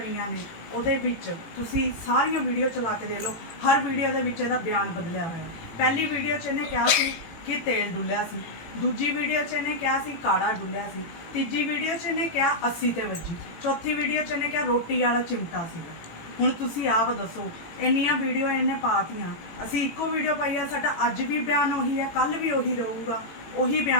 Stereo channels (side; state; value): right; late; 18 ms